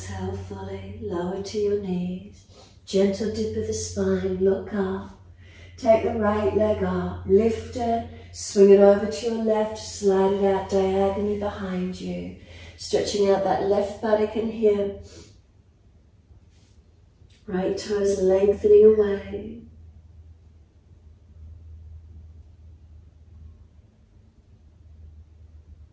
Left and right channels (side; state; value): both; identical; correlation 1.00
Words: fully, lower to your knees. Gentle dip of the spine, look up. Take the right leg up, lift it, swing it over to your left, slide it out diagonally behind you. Stretching out that left buttock and hip. Right toes lengthening away.